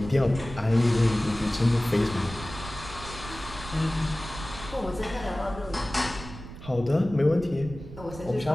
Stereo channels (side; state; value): right; noise; rumble, 13 dB below the sound